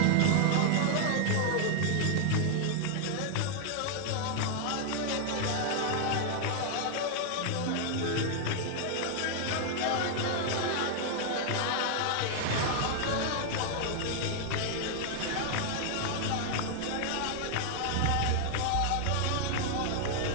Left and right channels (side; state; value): both; different; correlation 0.00